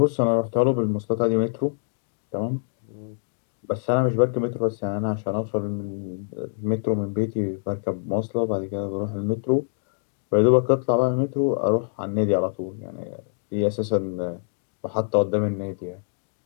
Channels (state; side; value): silent; right; digital silence